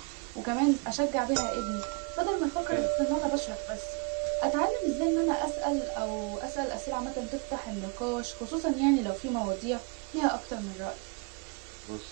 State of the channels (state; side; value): quieter; left; 32.9 dB